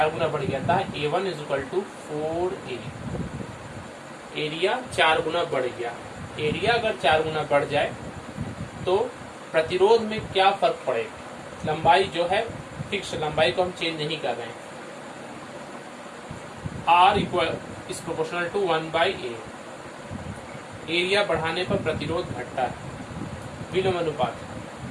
गुना बढ़ गया था, A1 is equal to 4A, area 4 गुना बढ़ गया। एरिया अगर 4 गुना बढ़ जाए तो प्रतिरोध में क्या फर्क पड़ेगा, लंबाई जो है फिक्स, लंबाई को हम चेंज नहीं कर रहे हैं। R equal is proportional to 1/A, area बढ़ाने पर प्रतिरोध घटता है, विलोम अनुपात।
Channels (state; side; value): identical; both; correlation 1.00